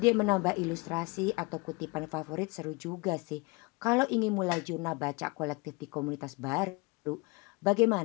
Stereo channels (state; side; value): quieter; right; 26.8 dB